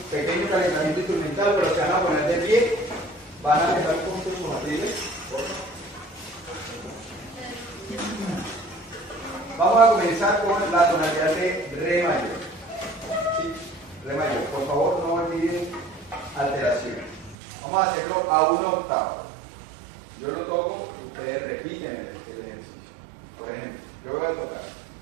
pequeño calentamiento instrumental, pero se van a poner de pie, van a empezar con sus materiales. Vamos a comenzar con la tonalidad de re mayor. ¿Sí? Re mayor, por favor no olviden alteraciones. Vamos a hacerlo a una octava. Yo lo toco, ustedes repiten el ejercicio. Por ejemplo, yo voy a tocar.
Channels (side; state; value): left; drops out; at 17.4 s